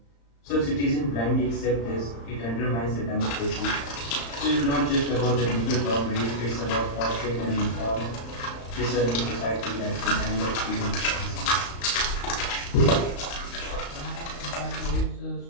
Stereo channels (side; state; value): right; late; 35 ms